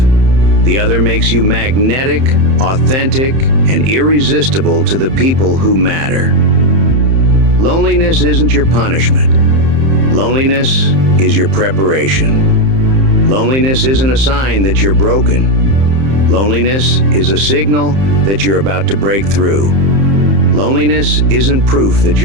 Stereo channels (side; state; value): left; late; 31 ms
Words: The other makes you magnetic, authentic, and irresistible to the people who matter. Loneliness isn't your punishment. Loneliness is your preparation. Loneliness isn't a sign that you're broken. Loneliness is a signal that you're about to break through. Loneliness isn't proof that